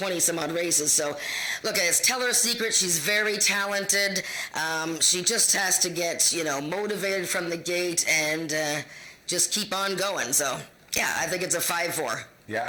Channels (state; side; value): identical; both; correlation 1.00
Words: races. So, look, it's Tell Her a Secret. She's very talented. She just has to get, motivated from the gate and just keep on going. So, yeah, I think it's a 5-4. Yeah,